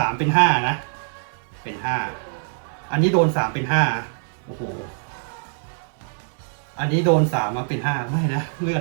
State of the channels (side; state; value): left; silent; digital silence